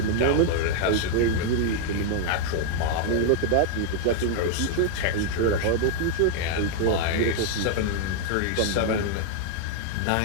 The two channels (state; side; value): different; both; correlation 0.00